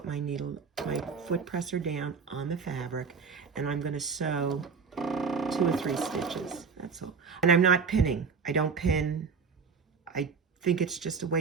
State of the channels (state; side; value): quieter; left; 5.5 dB